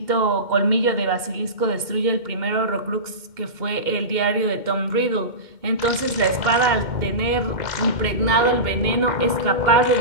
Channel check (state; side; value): late; left; 2.1 ms